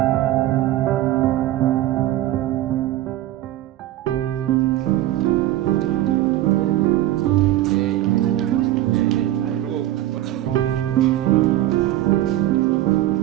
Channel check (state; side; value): quieter; left; 14.3 dB